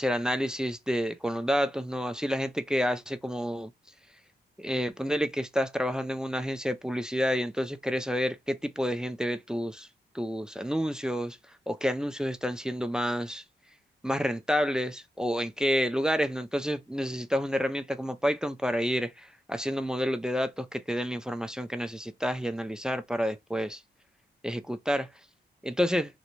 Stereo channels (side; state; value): both; normal; correlation 0.90